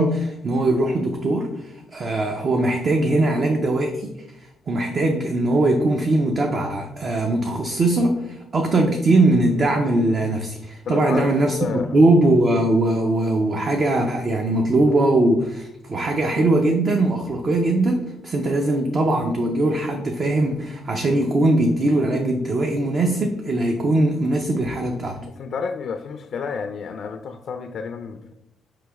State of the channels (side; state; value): both; normal; correlation 0.77